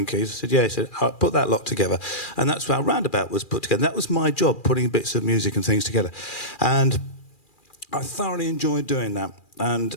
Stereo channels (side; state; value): right; late; 2.4 ms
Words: keys? I said, yeah. He said, I'll put that lot together. And that's how Roundabout was put together. That was my job, putting bits of music and things together. And I thoroughly enjoyed doing that. And